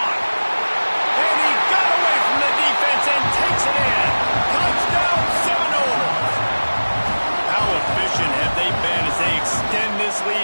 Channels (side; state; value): both; inverted; correlation -1.00